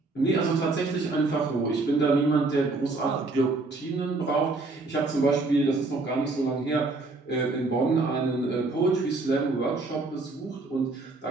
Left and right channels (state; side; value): quieter; left; 3.4 dB